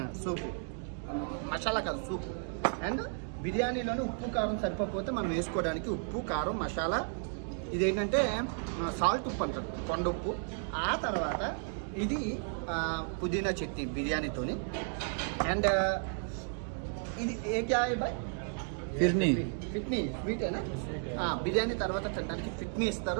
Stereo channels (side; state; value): left; silent; 55 dB below the other